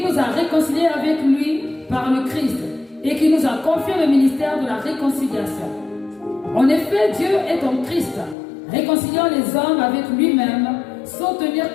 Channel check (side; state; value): right; drops out; at 8.3 s